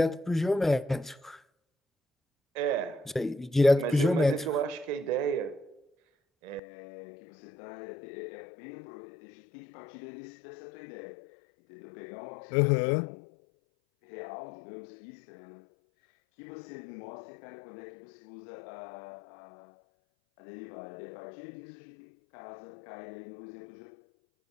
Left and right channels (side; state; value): right; drops out; at 6.6 s